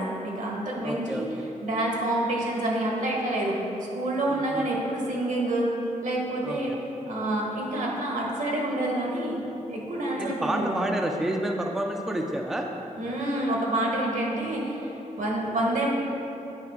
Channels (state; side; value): normal; both; correlation 0.62